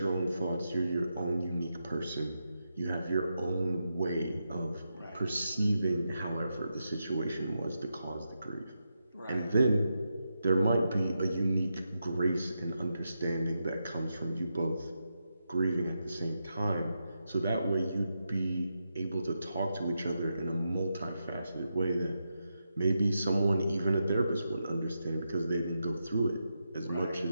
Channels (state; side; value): inverted; both; correlation -0.86